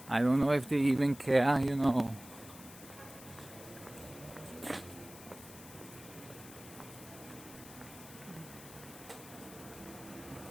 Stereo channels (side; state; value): left; noise; hiss, 17 dB below the sound